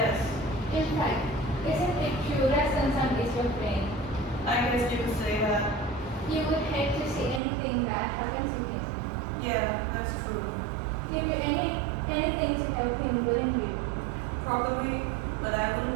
In fact, isn't it true that Sansan is your friend? I guess you could say that. You would hate to see anything bad happen to him. Yeah, that's true. Do you anything to help him, wouldn't you? Probably, but I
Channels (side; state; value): left; drops out; at 7.4 s